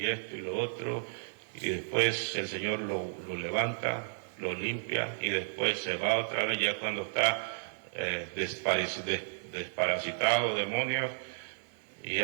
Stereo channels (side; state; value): left; silent; digital silence